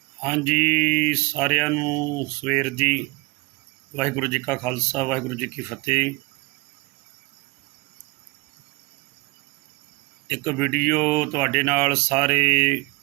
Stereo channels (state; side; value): quieter; left; 25.4 dB